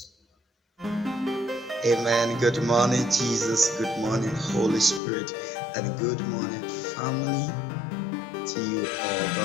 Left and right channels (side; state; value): right; drops out; at 5.0 s